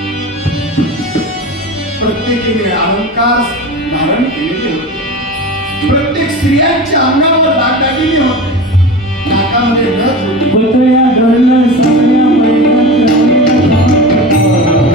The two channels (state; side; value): normal; both; correlation 0.30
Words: प्रत्येकीने अलंकार धारण केलेले होते. प्रत्येक स्त्रियांच्या अंगावर दागदागिने होते. नाकामध्ये नथ होती. पुतळ्या डोलल्या सगळ्या